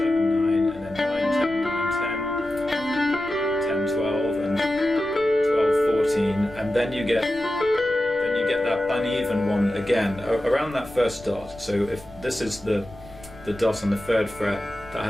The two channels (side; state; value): left; noise; rumble, 20 dB below the sound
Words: 9, and then 9, 10, 9, 10, 10, 12, and 12, 14, and then you get that uneven one again around that first dot. So if this is the dot on the 3rd fret, that